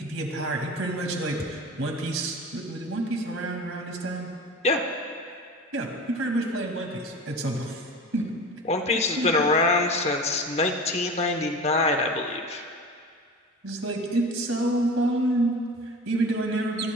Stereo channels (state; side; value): normal; both; correlation 0.34